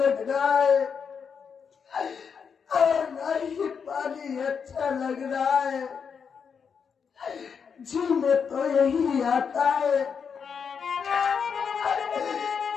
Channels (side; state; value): right; quieter; 6.5 dB